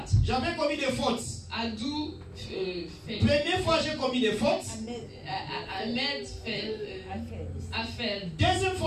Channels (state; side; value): identical; both; correlation 1.00